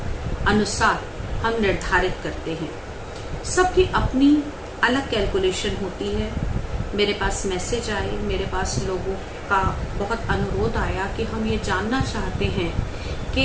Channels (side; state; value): both; identical; correlation 1.00